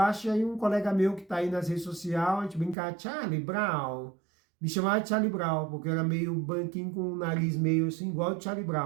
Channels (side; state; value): left; drops out; at 2.8 s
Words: e aí um colega meu que tá aí nas redes sociais, a gente brincava, Charlie Brown, me chamava de Charlie Brown, porque eu era meio branquinho com o nariz meio assim, igual o Charlie